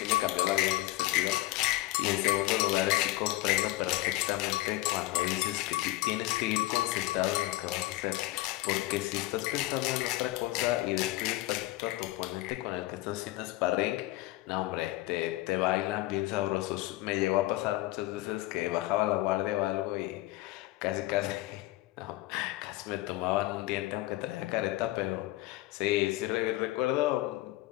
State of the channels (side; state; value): right; quieter; 17.7 dB